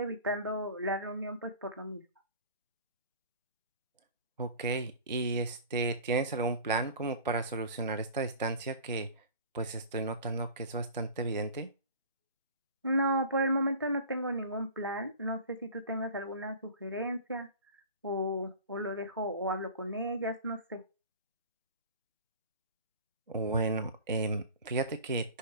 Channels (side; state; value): both; inverted; correlation -0.40